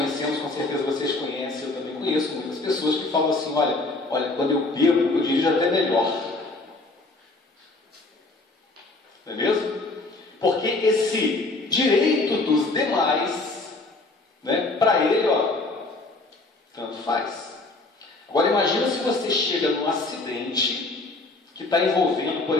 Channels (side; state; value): right; quieter; 3.2 dB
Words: com certeza vocês conhecem, eu também conheço muitas pessoas que falam assim: olha, quando eu bebo, eu dirijo até melhor. Não é mesmo? Porque esse direito dos demais, né, para ele, tanto faz. Agora imagina se você chega num acidente que está envolvendo,